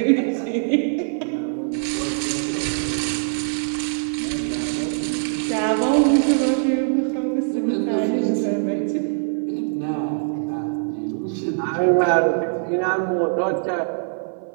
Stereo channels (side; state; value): left; silent; 59 dB below the other